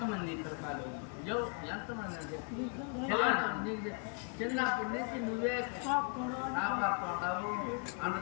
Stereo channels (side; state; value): right; quieter; 39.9 dB